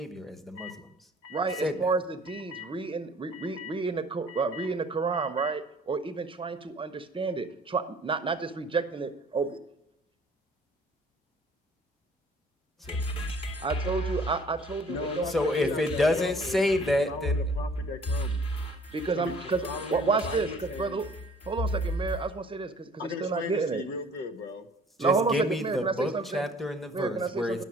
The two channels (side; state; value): both; normal; correlation 0.54